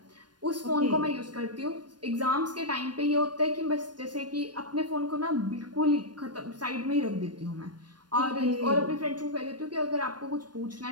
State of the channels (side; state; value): left; late; 0.70 ms